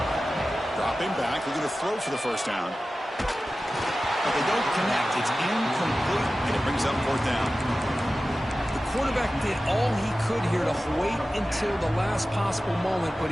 Dropping back. They're going to throw for the first down. But they don't connect. It's incomplete, and it brings up 4th down. The quarterback did all he could here to wait until the last possible moment, but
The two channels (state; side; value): normal; both; correlation 0.95